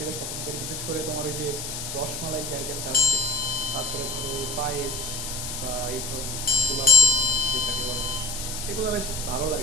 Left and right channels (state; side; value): noise; left; hiss, 6 dB below the sound